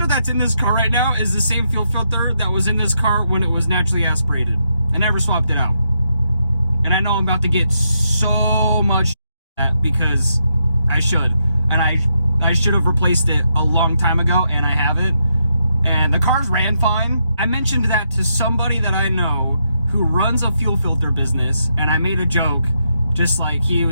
that's in this car right now is the same fuel filter that was in this car when it was naturally aspirated. I never swapped it out. And I know I'm about to get so much because I should. And I should have replaced it a long time ago, and I haven't. And the cars ran fine. I mentioned that to somebody that I know who runs a fuel filter business, and I made a joke, just like he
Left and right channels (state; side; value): inverted; both; correlation -0.81